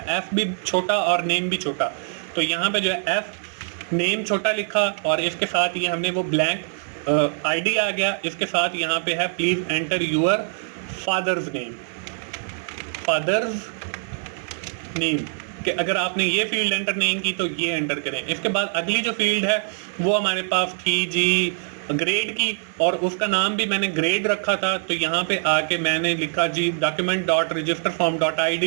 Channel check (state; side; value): silent; left; 62 dB below the other